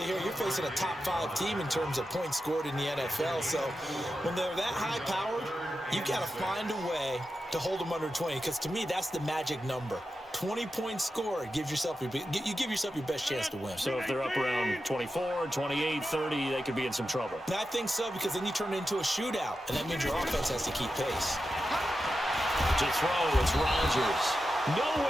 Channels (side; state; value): both; normal; correlation 0.91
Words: here, you're facing a top 5 team in terms of points scored in the NFL. So when they're that high-powered, you got to find a way to hold them under 20. Because to me, that's the magic number. 20 points scored gives yourself you give yourself your best chance to win. So if they're up around 24, 28, 30, they could be in some trouble. And I think so, because then you turn it into a shootout, and that means your offense has to keep pace. To throw, it's Rodgers.